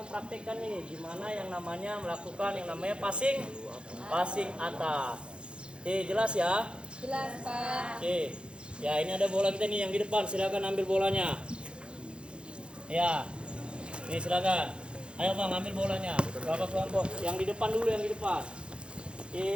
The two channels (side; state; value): left; late; 0.055 ms